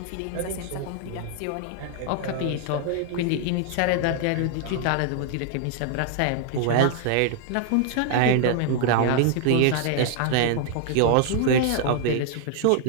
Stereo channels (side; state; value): both; different; correlation 0.00